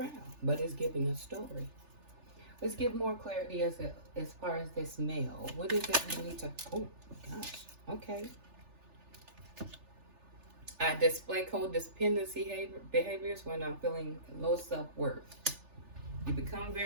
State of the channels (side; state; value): left; late; 3.4 ms